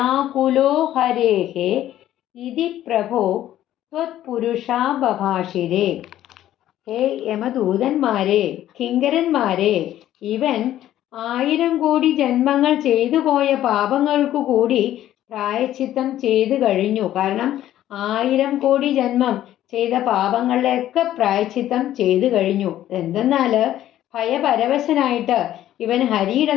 ഹരേഃ ഇതി പ്രഭോ ത്വത്പുരുഷാബഭാഷിരേ. ഹേ യമദൂതന്മാരെ, കിങ്കരന്മാരെ, ഇവൻ 1000 കോടി ജന്മങ്ങൾ ചെയ്തു പോയ പാപങ്ങൾക്കു കൂടി പ്രായശ്ചിത്തം ചെയ്തു കഴിഞ്ഞു. കാരണം 1000 കോടി ജന്മം ചെയ്ത പാപങ്ങളിലൊക്കെ പ്രായശ്ചിത്തം ചെയ്തു കഴിഞ്ഞു. എന്തെന്നാല് ഭയപരവശനായിട്ട് ഇവൻ ഹരിയുടെ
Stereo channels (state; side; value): quieter; right; 12.7 dB